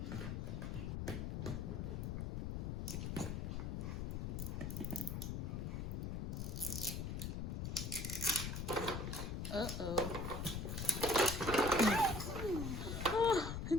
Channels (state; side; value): noise; left; rumble, 2 dB below the sound